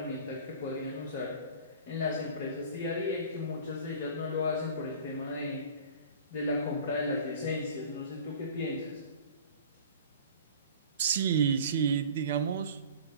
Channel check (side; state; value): both; inverted; correlation -0.43